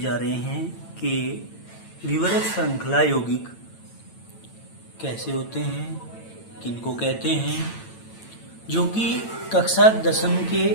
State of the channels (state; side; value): late; right; 9.0 ms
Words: रहे हैं कि विवरत श्रृंखला यौगिक कैसे होते हैं, किनको कहते हैं, जो कि कक्षा 10वीं